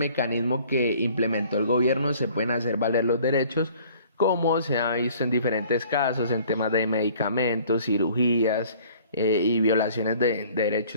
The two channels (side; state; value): both; inverted; correlation -0.54